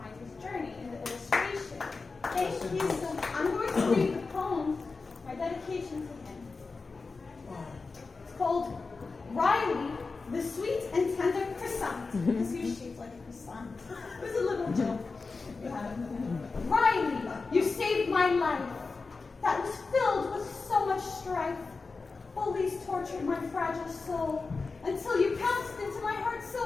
his journey in the illustration. Thank you so much. I'm going to read the poem, my dedication to him. It's called Riley, the Sweet and Tender Croissant. Because he was shaped like a croissant. It was a little joke. Riley, you saved my life. That was filled with so much strife. Bullies tortured my fragile soul until you pounced into my heart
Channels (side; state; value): right; quieter; 4.2 dB